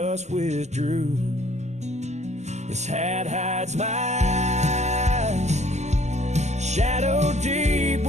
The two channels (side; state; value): left; late; 0.33 ms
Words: withdrew. This hat hides my eyes, shadow deep